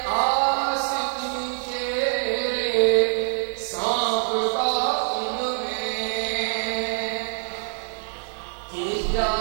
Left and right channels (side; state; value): left; silent; 58 dB below the other